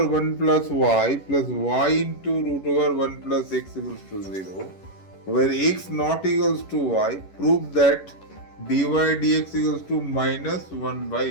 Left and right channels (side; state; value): right; late; 11 ms